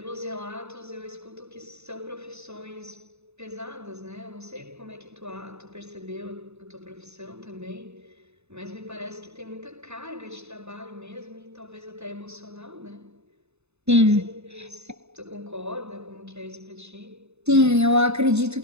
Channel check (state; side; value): late; left; 0.81 ms